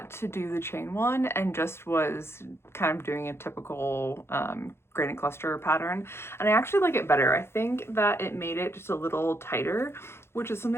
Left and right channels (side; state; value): right; late; 0.12 ms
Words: to do the chain one and just was kind of doing a typical gradient cluster pattern. And I actually like it better. I think that it made it just a little tighter, which is